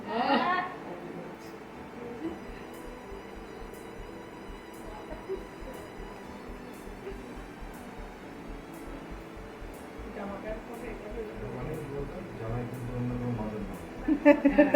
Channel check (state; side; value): identical; both; correlation 1.00